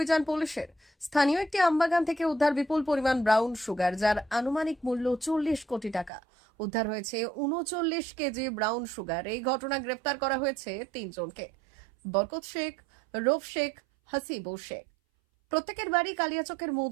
পুলিশের স্থানীয় একটি আমবাগান থেকে উদ্ধার বিপুল পরিমাণ ব্রাউন সুগার, যার আনুমানিক মূল্য 40 কোটি টাকা। উদ্ধার হয়েছে 39 কেজি ব্রাউন সুগার। এই ঘটনায় গ্রেফতার করা হয়েছে 3 জনকে: বরকত শেখ, রৌফ শেখ, হাসিবুর শেখ। প্রত্যেকের বাড়ি কালিয়াচকের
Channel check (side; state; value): left; drops out; at 6.1 s